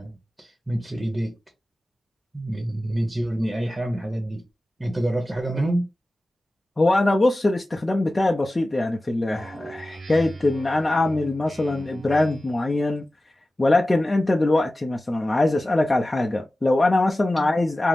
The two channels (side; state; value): both; normal; correlation 0.96